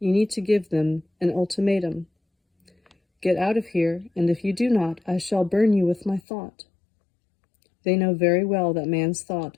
need to give them an ultimatum. Get out of here, and if you do not, I shall burn you with my thought. They know very well that man's thought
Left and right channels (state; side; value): drops out; right; at 6.2 s